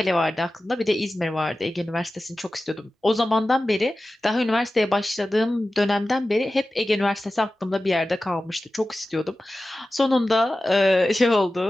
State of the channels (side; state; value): both; normal; correlation 0.95